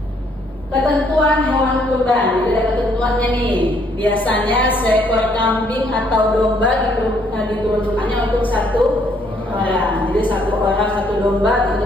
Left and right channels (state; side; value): normal; both; correlation 0.67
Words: Ketentuan hewan kurban, jadi ada ketentuannya nih. Biasanya seekor kambing atau domba diperuntukkannya untuk 1 orang. Jadi 1 orang 1 domba,